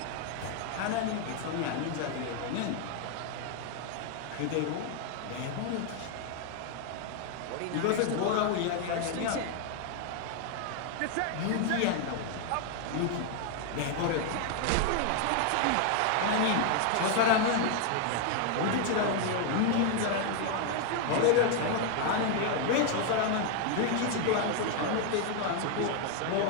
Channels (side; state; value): both; different; correlation 0.00